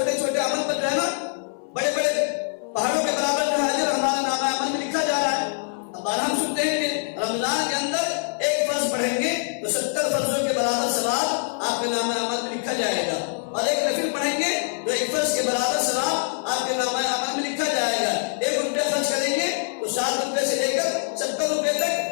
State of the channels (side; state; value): right; silent; 59 dB below the other